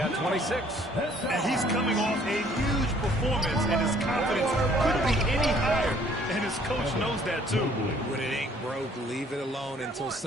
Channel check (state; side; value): normal; both; correlation 0.59